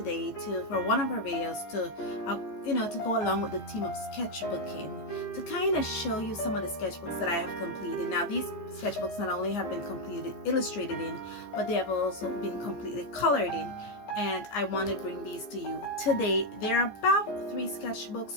for one of our videos to to go along with the theme of sketchbooking, to kind of show you some of the sketchbooks that I have completed. Now these sketchbooks not only have been completed illustrated in, but they have also been completely colored in. And I want to bring these to you today. There are about 3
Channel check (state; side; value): late; right; 14 ms